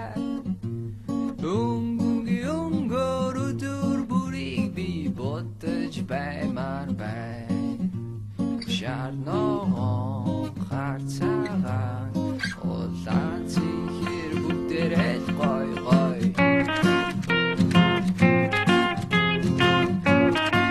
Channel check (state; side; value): identical; both; correlation 1.00